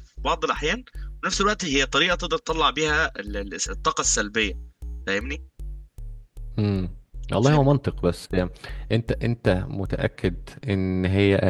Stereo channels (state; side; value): identical; both; correlation 1.00